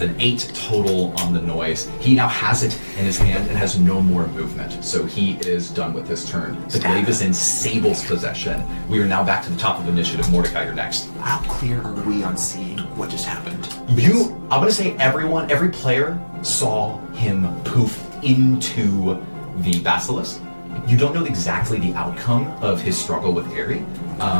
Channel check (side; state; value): both; inverted; correlation -1.00